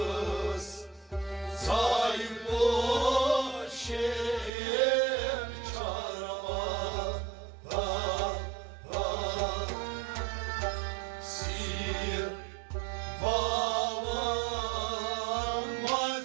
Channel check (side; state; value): left; drops out; at 4.5 s